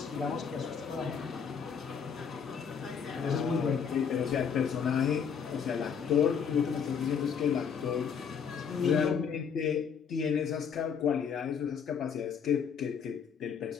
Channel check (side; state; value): right; quieter; 6.9 dB